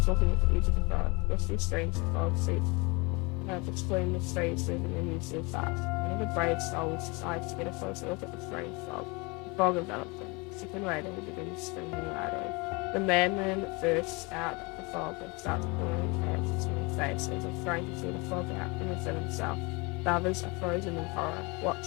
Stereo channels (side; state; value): right; quieter; 28.0 dB